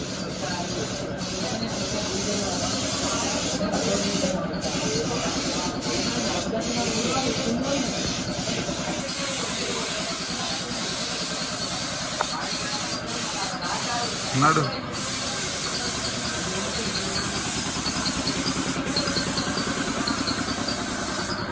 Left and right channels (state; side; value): identical; both; correlation 1.00